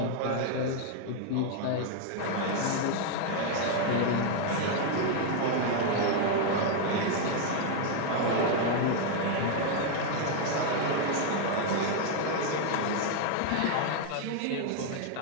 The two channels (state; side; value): different; both; correlation 0.00